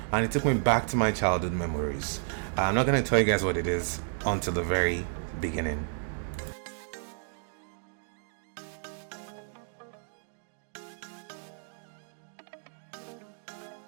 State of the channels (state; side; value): silent; left; digital silence